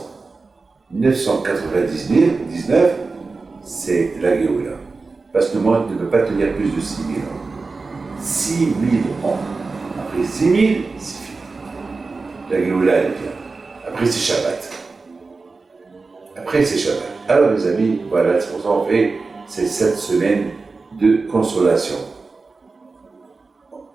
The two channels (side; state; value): left; quieter; 4.0 dB